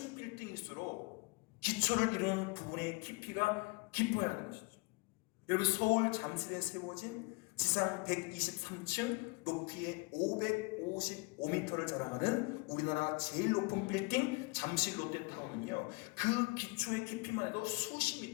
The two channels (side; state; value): right; quieter; 27.7 dB